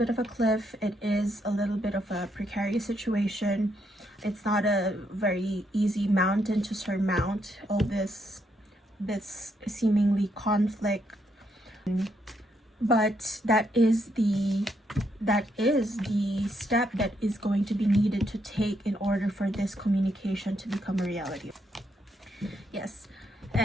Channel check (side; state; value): both; normal; correlation 0.76